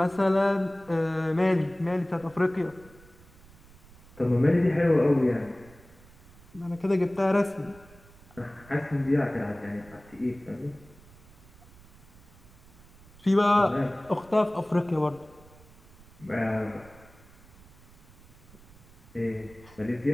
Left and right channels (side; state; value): right; noise; rumble, 23 dB below the sound